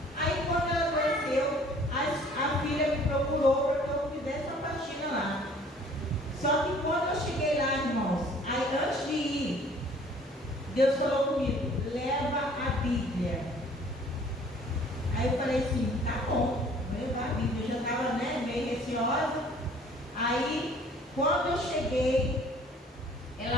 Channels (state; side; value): normal; both; correlation 0.54